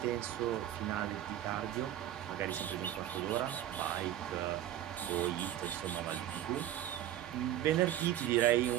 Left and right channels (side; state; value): left; quieter; 12.1 dB